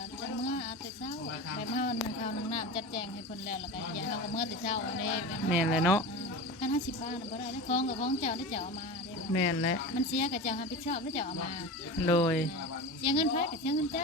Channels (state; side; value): normal; both; correlation 0.29